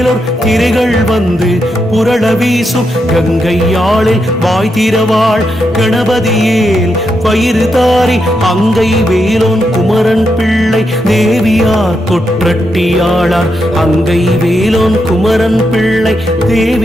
திரைகள் வந்து புரள வீசும். கங்கையாளில் வாய் திறவாள் கணபதியேல் பயிறு தாரி அங்கை வேலோன் குமரன் பிள்ளை தேவியார் கொற்றட்டியாளார். அங்கை வேலோன் குமரன் பிள்ளை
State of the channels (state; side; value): normal; both; correlation 0.83